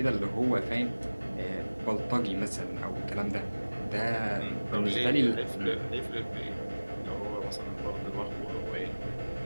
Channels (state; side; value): inverted; both; correlation -1.00